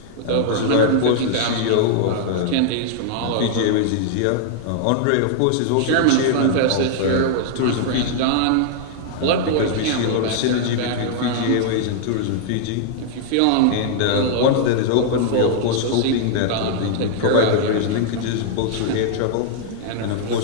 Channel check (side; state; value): both; different; correlation -0.01